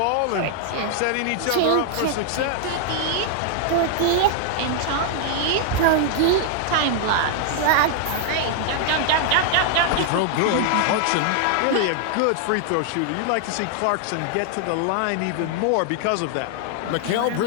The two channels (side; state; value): both; different; correlation -0.01